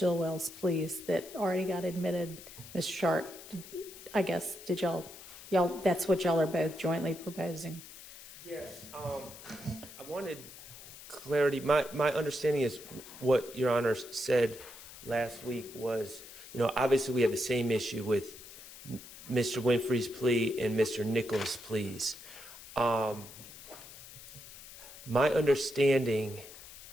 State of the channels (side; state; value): left; noise; hiss, 16 dB below the sound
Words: pleas that already got admitted. Ms. Sharp, I guess, did y'all, that's what y'all are both jointly proposing? Yes, I wanted clarity. My understanding is what Your Honor said last week was, obviously we have the same issue with Mr. Winfrey's plea and Mr. Nichols' pleas. My understanding